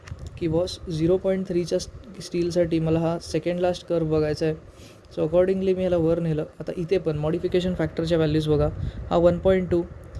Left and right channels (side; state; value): both; identical; correlation 1.00